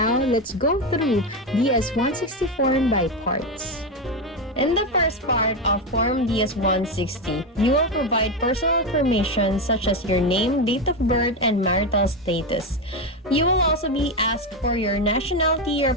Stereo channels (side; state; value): both; normal; correlation 0.12